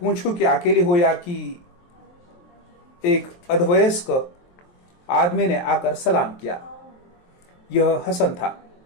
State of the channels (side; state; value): right; late; 23 ms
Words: कि अकेली हो या कि एक अधवयस्क आदमी ने आकर सलाम किया। यह हसन था।